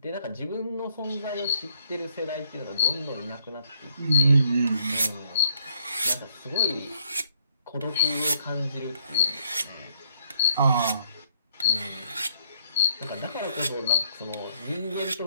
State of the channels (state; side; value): inverted; both; correlation -0.70